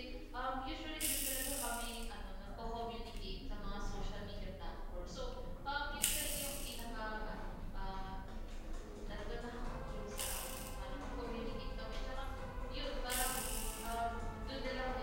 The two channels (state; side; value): identical; both; correlation 1.00